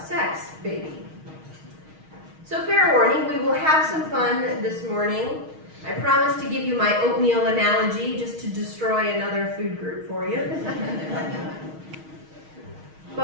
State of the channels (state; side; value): late; left; 6.4 ms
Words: sex, baby." So fair warning, we will have some fun this morning. I promise to give you my oatmeal analogy just to destroy another food group for you.